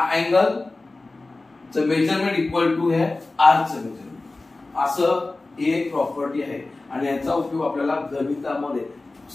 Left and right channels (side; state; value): right; quieter; 3.2 dB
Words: अँगल च मेजरमेंट इक्वल टू है आर्कचं मेजरमेंट, असं एक प्रॉपर्टी आहे. आणि याचा उपयोग आपल्याला गणितामध्ये